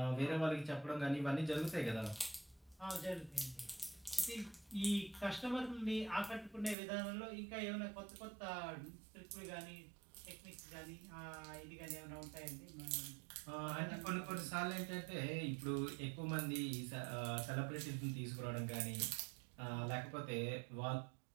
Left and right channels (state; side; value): drops out; left; at 6.8 s